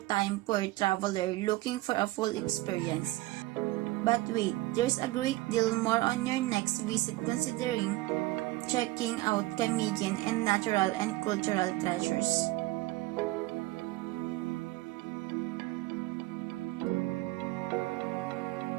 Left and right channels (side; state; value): left; quieter; 18.7 dB